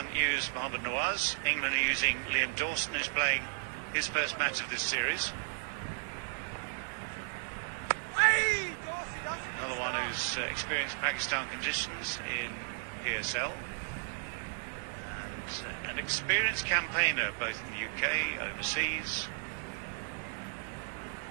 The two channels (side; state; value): left; silent; digital silence